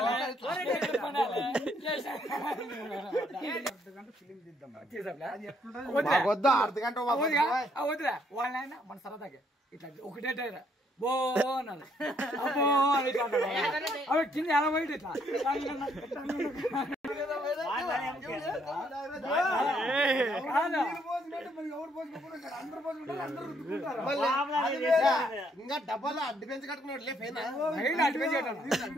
వద్దురా వాళ్ళైనా మన సరదాగా ఇట్లా ఒకటే బో అన్నాడు అబ్బో అని అవి కింద ఎలా పోయి ఇట్లా ఇంకా డబ్బాలో అడ్డు పెంచి కట్టుకున్నాడు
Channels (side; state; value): both; normal; correlation 0.70